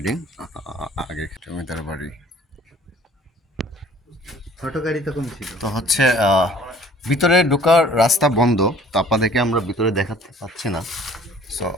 আগে জমিদার বাড়ি। তো হচ্ছে ভিতরে ঢোকার রাস্তা বন্ধ, তো আপনাদেরকে আমরা ভিতরে দেখাতে পাচ্ছি না। সো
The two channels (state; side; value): normal; both; correlation 0.53